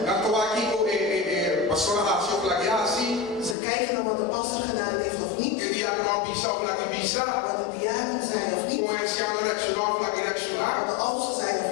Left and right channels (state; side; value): drops out; right; at 3.6 s